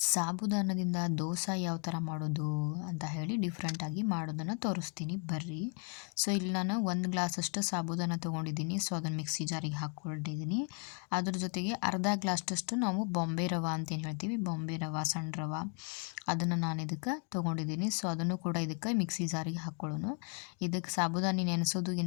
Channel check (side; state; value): right; quieter; 38.1 dB